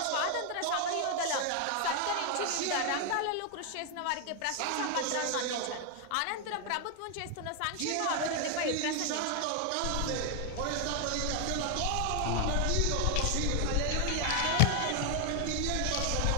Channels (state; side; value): different; both; correlation 0.00